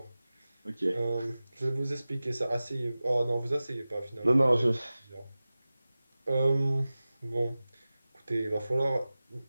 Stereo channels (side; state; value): both; inverted; correlation -0.97